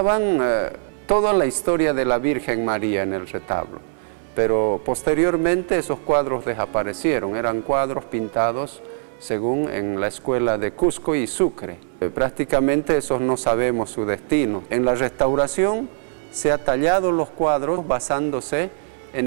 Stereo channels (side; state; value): left; silent; 60 dB below the other